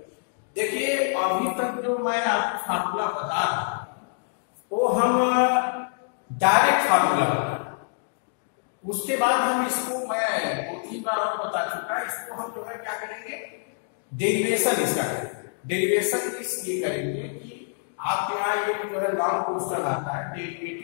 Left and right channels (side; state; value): right; silent; digital silence